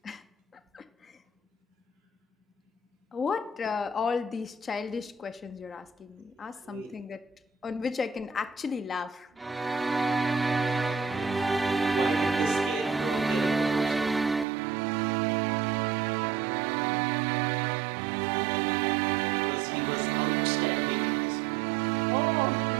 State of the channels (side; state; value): left; drops out; at 14.5 s